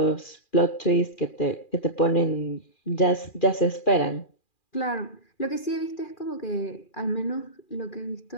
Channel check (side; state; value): right; late; 2.4 ms